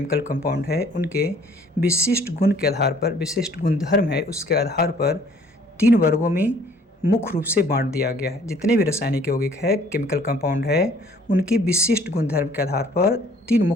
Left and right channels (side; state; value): both; normal; correlation 0.57